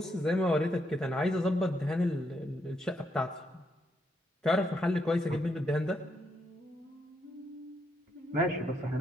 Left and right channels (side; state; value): both; normal; correlation 0.78